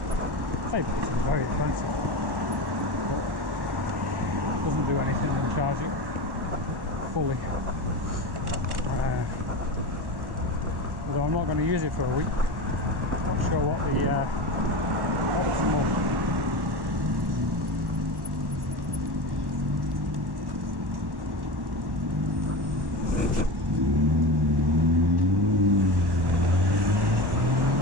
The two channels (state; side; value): late; left; 1.1 ms